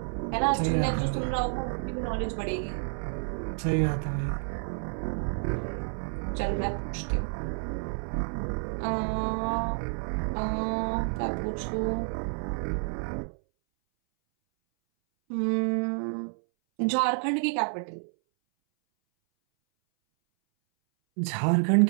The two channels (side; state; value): left; silent; 58 dB below the other